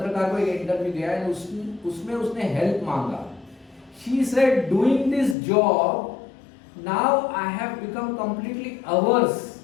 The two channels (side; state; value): right; drops out; at 5.4 s